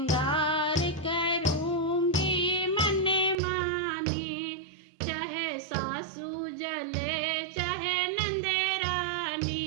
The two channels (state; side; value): drops out; left; at 3.4 s